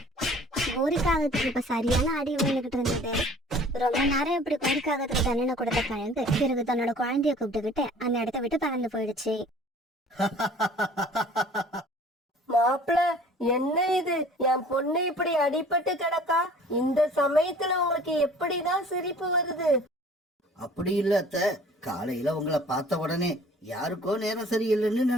கோரிக்காகத்துக்கு இப்ப சரியான அடி விழுந்துகிட்டு இருந்தது. ரொம்ப நேரம் இப்படி கோரிக்காகத்துக்கு தண்டனை கொடுத்த கழுகு பிறகு தன்னோட குழந்தைய கூப்பிட்டுக்கிட்டு அந்த இடத்த விட்டு பறந்து போயிடுச்சு. மாப்பிள, என்ன இது? என் பொண்ணு இப்படி அடிபட்டு கிடக்கா. இந்த சமயத்துல உங்களுக்கு எப்படிதான் சிரிப்பு வருது? அப்படி இல்ல அத்தை, காலையில உங்களை பார்த்த உடனே யாருக்கோ நேரம் சரியில்லைன்னு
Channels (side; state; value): both; normal; correlation 0.50